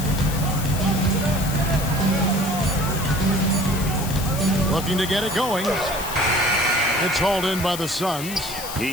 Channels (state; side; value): noise; left; hiss, 9 dB below the sound